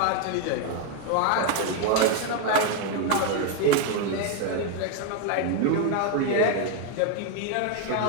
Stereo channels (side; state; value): both; different; correlation 0.01